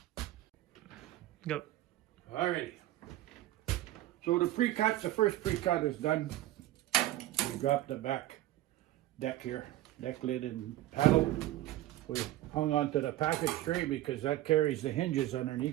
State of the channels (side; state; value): left; quieter; 15.1 dB